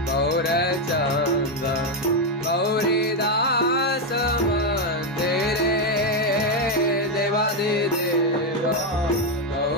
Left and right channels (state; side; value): normal; both; correlation 0.05